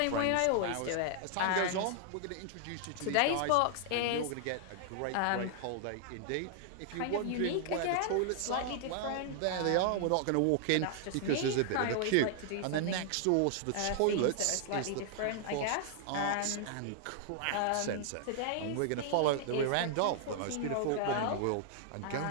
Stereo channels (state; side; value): different; both; correlation -0.01